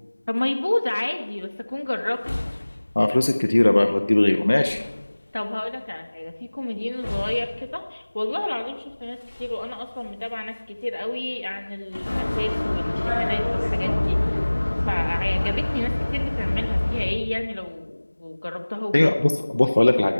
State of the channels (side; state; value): both; inverted; correlation -1.00